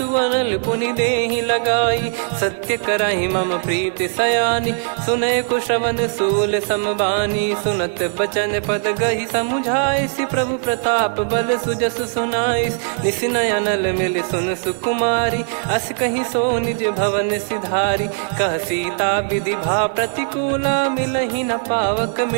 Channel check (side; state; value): left; silent; digital silence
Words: अनल पुनि देहि लगाई। सत्य करहि मम प्रीति सयानी, सुनय को श्रवण सूल समबानी। सुनत बचन पद गहि समुझाइसि, प्रभु प्रताप बल सुजस सुनाइस। निसिनय अनल मिल सुन सुकुमारी, अस कहि सो निज भवन सिधारी। कह सीता विधि भा प्रतिकूला, मिलहि न पावक